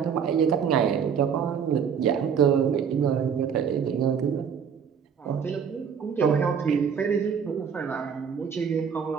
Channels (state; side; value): quieter; left; 7.2 dB